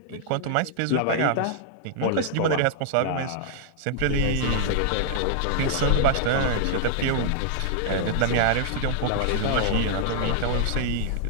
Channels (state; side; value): different; both; correlation -0.01